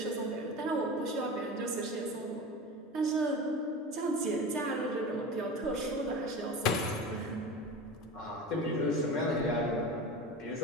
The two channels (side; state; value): both; normal; correlation 0.30